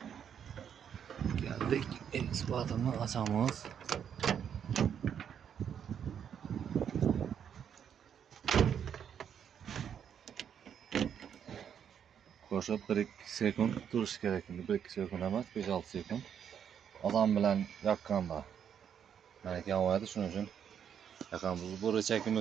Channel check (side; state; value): left; quieter; 8.4 dB